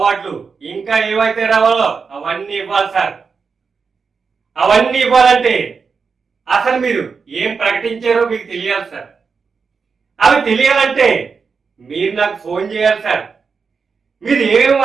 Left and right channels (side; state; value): left; quieter; 5.3 dB